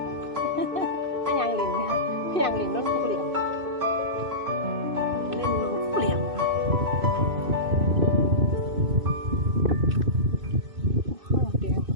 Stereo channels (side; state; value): left; late; 2.6 ms